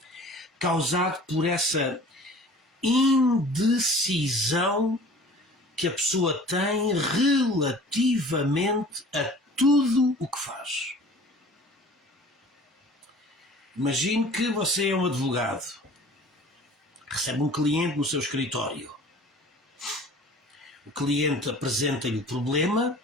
causado por essa indecisão que a pessoa tem relativamente a tudo o que faz. Imagine que você é um advogado, recebe um cliente no seu escritório. O cliente apresenta-lhe o problema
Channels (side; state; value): both; normal; correlation 0.46